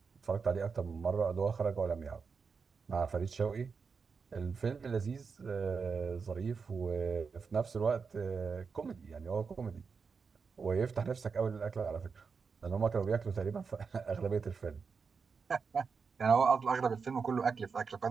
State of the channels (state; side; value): quieter; left; 5.3 dB